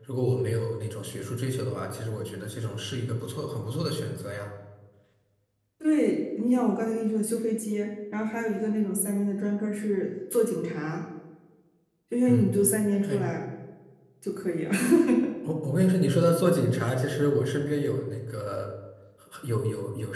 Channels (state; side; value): identical; both; correlation 1.00